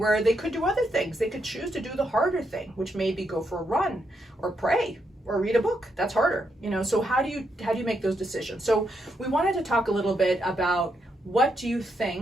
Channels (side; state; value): both; normal; correlation 0.80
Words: they could do other things. They could choose to do the harder thing, which may be go for a run or pray or read a book. That's harder, so how do you make those decisions? So we wanted to talk a little bit about what do you